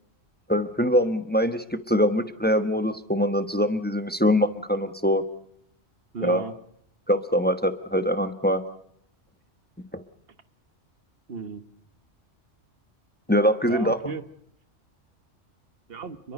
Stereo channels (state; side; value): normal; both; correlation 0.31